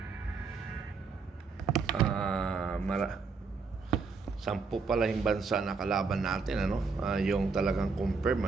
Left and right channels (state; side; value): quieter; left; 4.7 dB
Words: Sampu pala yung bansa na kalaban natin, ano? Yung talagang